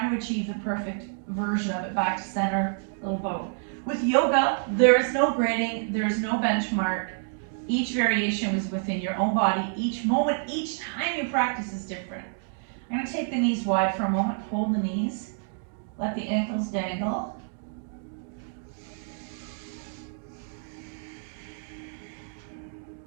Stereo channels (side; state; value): left; silent; 59 dB below the other